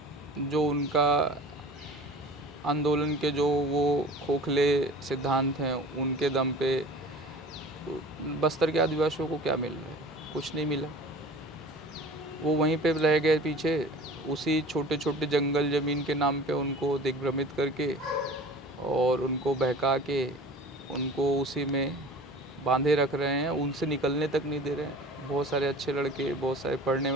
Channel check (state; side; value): normal; both; correlation 0.41